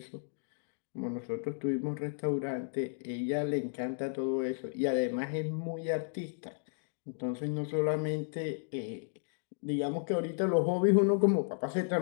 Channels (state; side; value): silent; right; digital silence